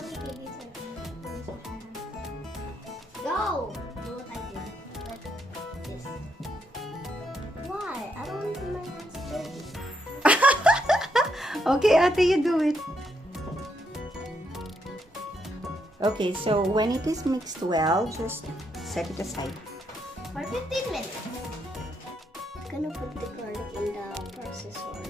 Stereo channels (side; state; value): both; normal; correlation 0.77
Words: Go! Do what I did. Like this. Why? I don't want my hands dirty. Okay, ate, you do it. Okay, so when it is mixed well, just set it aside. For 15 minutes. I'm gonna put the garlic in the processor.